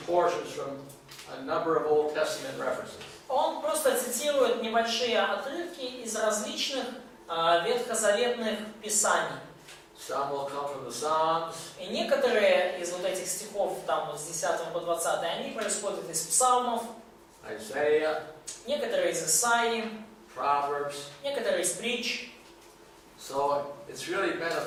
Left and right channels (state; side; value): identical; both; correlation 1.00